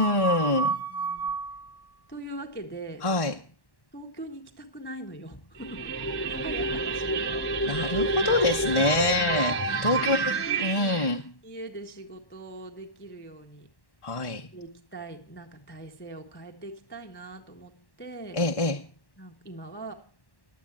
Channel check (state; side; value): late; right; 1.1 ms